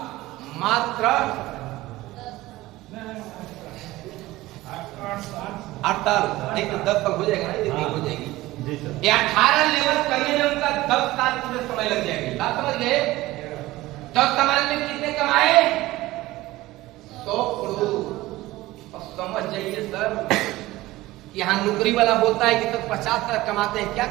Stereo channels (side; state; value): left; quieter; 17.9 dB